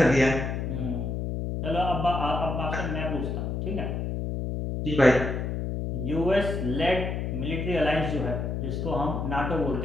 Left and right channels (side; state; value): left; noise; hum, 2 dB below the sound